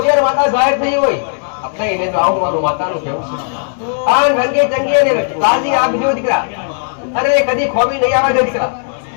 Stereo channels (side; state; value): right; silent; digital silence